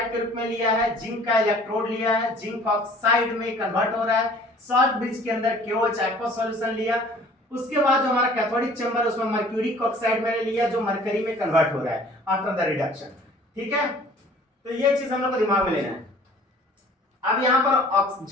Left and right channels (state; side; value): normal; both; correlation 0.51